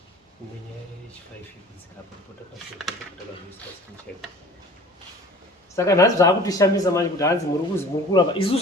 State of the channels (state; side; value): normal; both; correlation 0.46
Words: Saka nhasi zvaakutishamisa manje kuti hanzi muri kuzi muri kuramba.